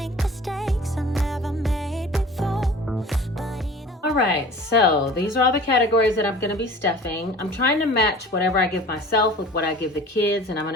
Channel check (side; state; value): both; normal; correlation 0.43